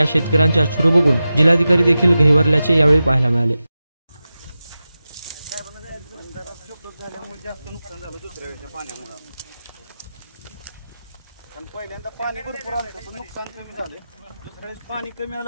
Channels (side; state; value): both; inverted; correlation -0.93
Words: शेतकऱ्यांचे अश्रू बघून जिल्हाधिकारी देखील गहिवरल्याचे यावेळी पाहायला मिळाले। जास्त नुकसान झालं दुसऱ्या वेळेच्या पाण्यामुळे, कारण पहिल्यांदा पाणी भरपूर आलं पण नुकसान कमी झालं, दुसऱ्या वेळेस पाणी कमी आलं